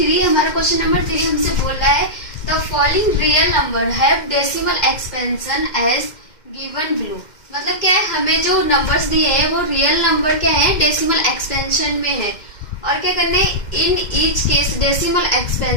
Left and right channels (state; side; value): late; right; 2.1 ms